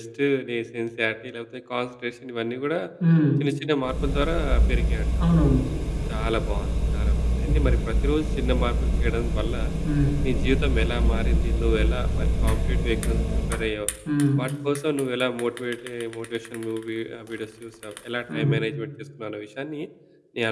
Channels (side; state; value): both; identical; correlation 1.00